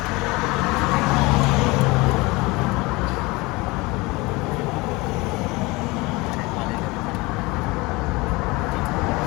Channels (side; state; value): right; quieter; 23.5 dB